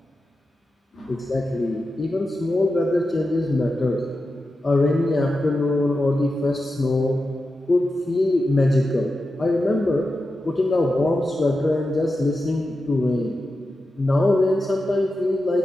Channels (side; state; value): both; normal; correlation 0.91